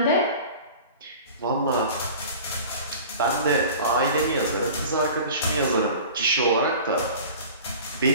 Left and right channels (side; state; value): both; inverted; correlation -0.40